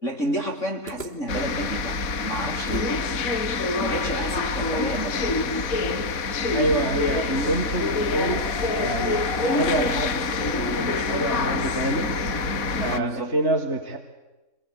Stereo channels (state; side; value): late; right; 4.1 ms